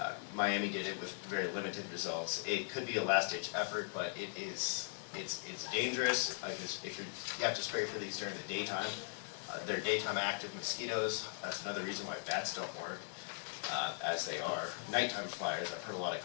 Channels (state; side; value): silent; right; digital silence